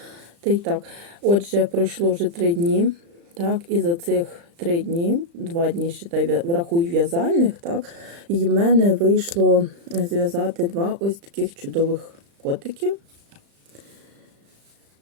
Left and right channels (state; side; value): late; left; 35 ms